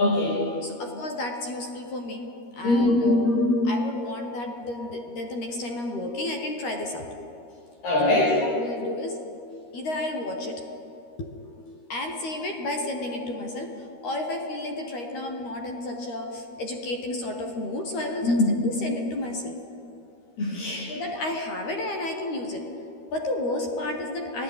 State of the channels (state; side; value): late; right; 13 ms